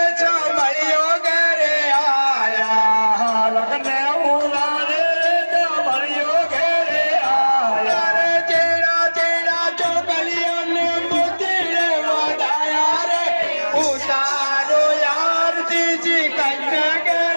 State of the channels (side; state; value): both; inverted; correlation -1.00